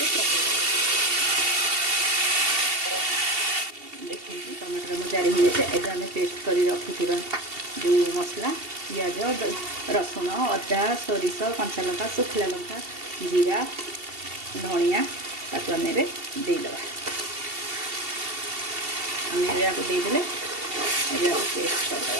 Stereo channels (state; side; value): late; left; 2.7 ms